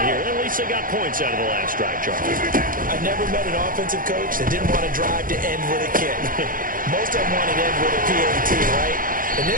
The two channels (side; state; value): left; late; 0.40 ms